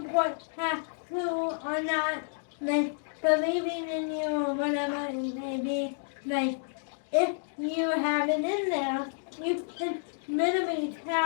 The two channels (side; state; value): right; silent; digital silence